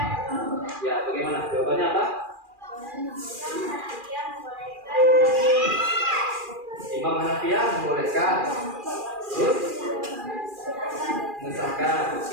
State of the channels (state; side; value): late; left; 2.4 ms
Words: Ya, bagaimana? Jawabannya apa? Imam Hanafiyah membolehkan. Terus mengesahkan.